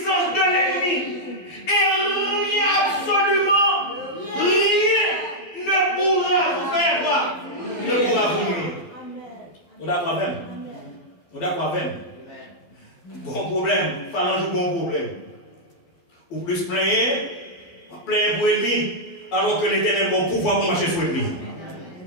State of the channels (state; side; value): late; right; 12 ms